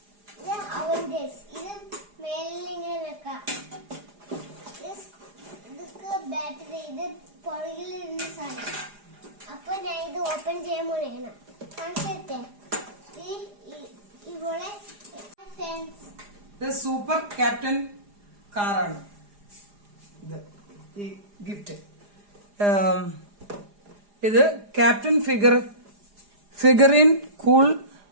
ഇത് അവന്റേഴ്സ്. ഇത് മേലിൽ ഇങ്ങനെ വെക്കാം. ഇതൊക്കെ ബാറ്ററി. ഇത് പുറകിൽ ഇരുന്ന സാധനം. അപ്പൊ ഞാൻ ഇത് ഓപ്പൺ ചെയ്യാൻ പോലെയാണ്. കാണിച്ചേ ഇവിടെ സൂപ്പർ ക്യാപ്റ്റൻ കാറാണ് ഇത്. ഈ ഗിഫ്റ്റ് ഇത് captain figurine cool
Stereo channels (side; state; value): left; late; 4.9 ms